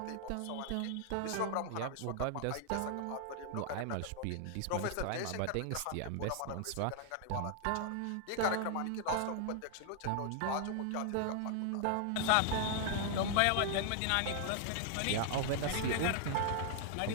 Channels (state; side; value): different; both; correlation 0.00